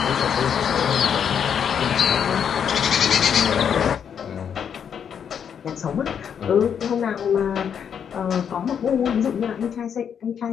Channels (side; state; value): right; quieter; 7.9 dB